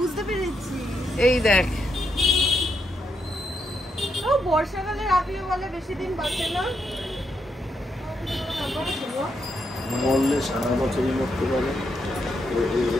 পেরেছি। এই দেখ, ও বর্ষাকালে রাপিও বলে বেশি দিন বাঁচে না। মরলে সারা বছরই মরতে পারে।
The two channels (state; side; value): normal; both; correlation 0.80